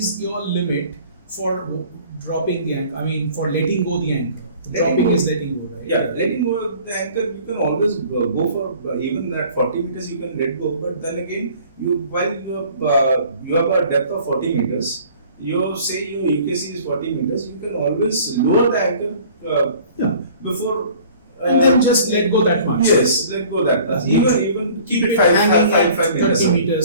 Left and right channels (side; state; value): both; inverted; correlation -0.50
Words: your limit for dropping the anchor? I mean, for letting go the anchor. Letting Dropping go. is letting go, right? Yeah, letting go of the anchor, you can always go for even at 40 meters. You can let go, but then again, while you have a depth of 40 meters, your UKC is 40 meters. You can always lower the anchor Yeah. before. And then just let go that much. Yes, let go that much. Even keep it hanging at 5 meters. 30